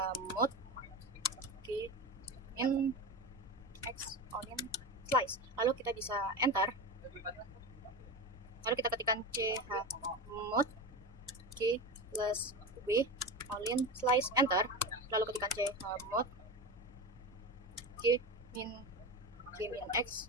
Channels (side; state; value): both; normal; correlation 0.24